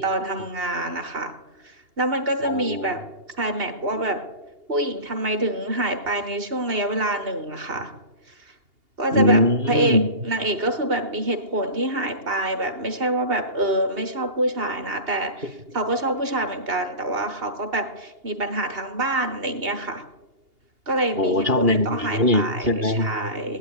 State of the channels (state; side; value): late; left; 2.8 ms